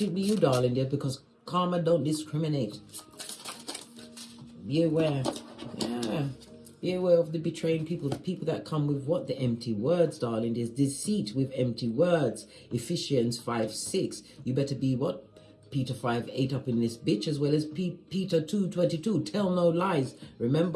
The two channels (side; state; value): both; identical; correlation 1.00